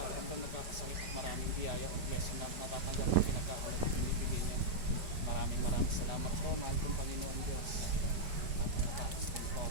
nagkakasakit at maraming biyaya o blessing na natatanggap at pinagkakalat at binibigay niya. Maraming salamat po, mahal kong Panginoon Diyos. At natapos din po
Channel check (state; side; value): late; left; 5.0 ms